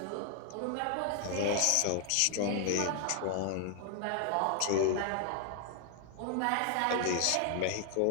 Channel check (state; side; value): different; both; correlation 0.00